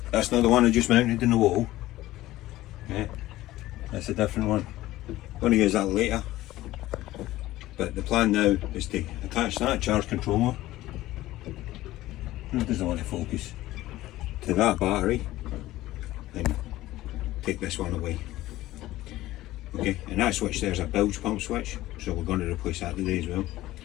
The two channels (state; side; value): quieter; right; 16.2 dB